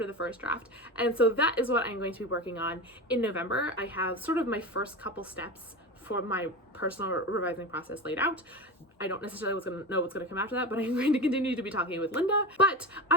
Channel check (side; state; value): both; normal; correlation 0.25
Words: the first draft. And so that is what I'm going to be working on in November. I have sort of my first couple steps for my personal revising process laid out. I don't necessarily know what's going to come after that, but I'm going to continue to be talking with Linda. But